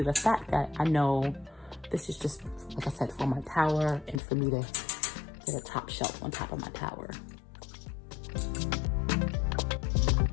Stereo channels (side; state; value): right; drops out; at 4.2 s